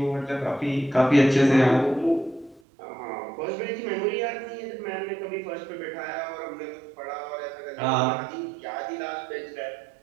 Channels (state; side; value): drops out; left; at 2.6 s